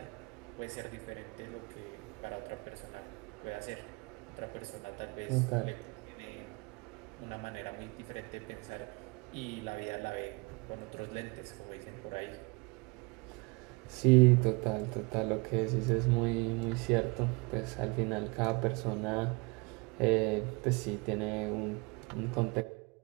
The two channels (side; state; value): left; quieter; 28.8 dB